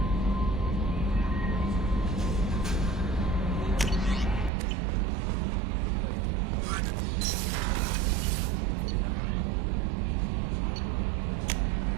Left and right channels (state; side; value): drops out; left; at 4.5 s